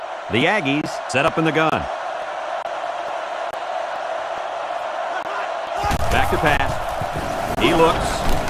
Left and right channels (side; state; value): both; identical; correlation 1.00